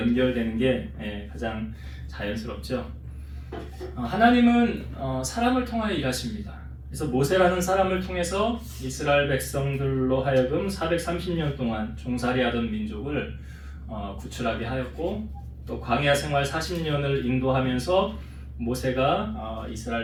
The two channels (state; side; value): identical; both; correlation 1.00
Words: 게 가장 자연스럽죠. 하나님은 사람을 통하여 일하십니다. 그래서 모세라는 사람을 통해서 이스라엘 백성들로 하여금 430년 동안 종살이하던 민족을 구출하게 하였고, 또 광야 생활 40년을 인도하면서 모세가